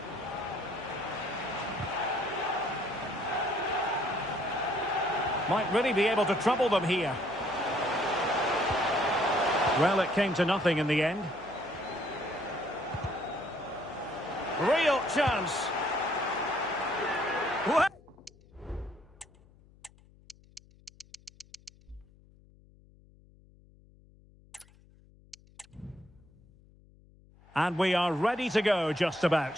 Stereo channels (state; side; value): noise; left; hum, 27 dB below the sound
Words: Might really be able to trouble them here. Well, it came to nothing in the end. Real chance. What? And we are ready to go just